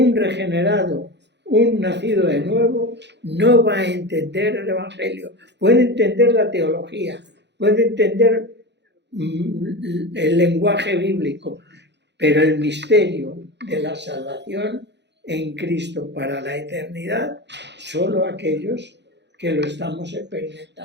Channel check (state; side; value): late; left; 0.51 ms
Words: regenerado, un nacido de nuevo, no va a entender el Evangelio. Puede entender la teología, puede entender el lenguaje bíblico, pero el misterio de la salvación en Cristo para la eternidad, solo aquellos que lo estamos